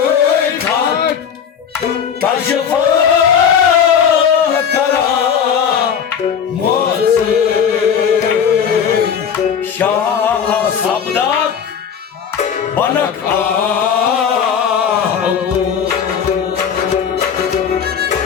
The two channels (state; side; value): quieter; right; 7.6 dB